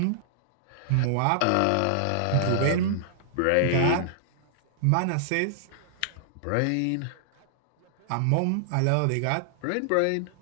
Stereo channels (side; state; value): both; different; correlation -0.01